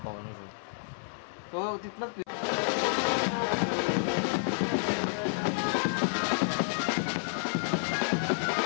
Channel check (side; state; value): right; silent; 58 dB below the other